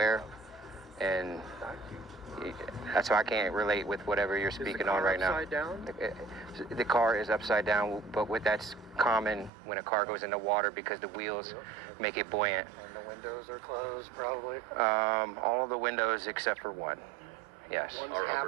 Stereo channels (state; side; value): drops out; left; at 9.5 s